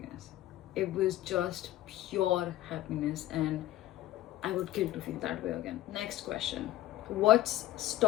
It was just pure happiness, and I would kill to feel that way again. Next question. What's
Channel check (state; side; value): quieter; right; 14.9 dB